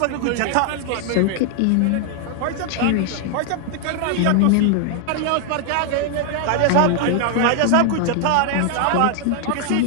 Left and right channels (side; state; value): both; different; correlation 0.00